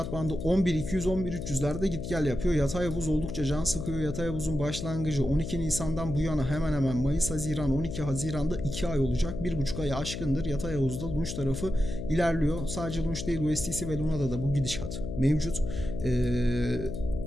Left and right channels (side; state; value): left; noise; hum, 6 dB below the sound